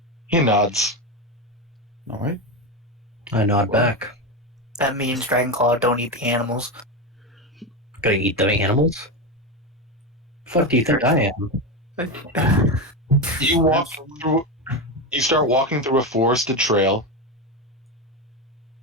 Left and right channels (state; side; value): normal; both; correlation 0.15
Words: He nods. All right. I nod back. That means Dragonclaw don't eat the animals. Gonna eat the animals? Fuck do you think I am? You walk through. You start walking through a forested trail.